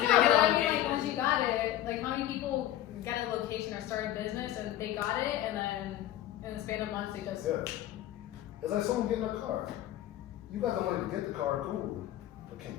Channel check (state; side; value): quieter; right; 13.0 dB